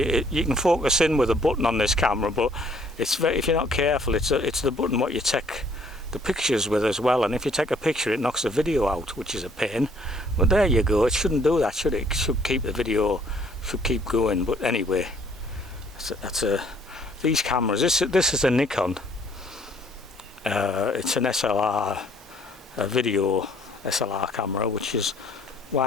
can focus in with a button on this camera, but if you're not careful, it's the button what you take the pictures with as well. And if you take a picture, it knocks the video out, which is a pain. But there you go. It shouldn't do that, should it? It should keep the video, should keep going. But anyway, these cameras. This is a Nikon. It's an SLR, a video SLR camera, which is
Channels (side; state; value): both; normal; correlation 0.61